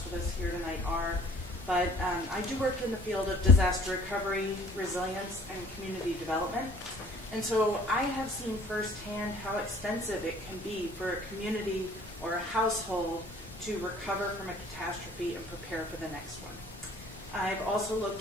of us here tonight are. But I do work in the field of disaster recovery, resilience, and community development. And so I have seen firsthand how expensive it can be for a community or a household to recover from a catastrophe and prepare for the next one. I've also looked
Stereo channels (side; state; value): both; normal; correlation 0.54